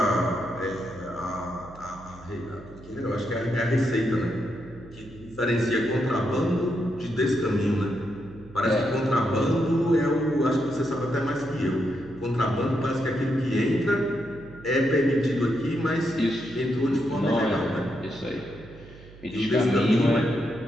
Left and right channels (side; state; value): right; noise; hum, 20 dB below the sound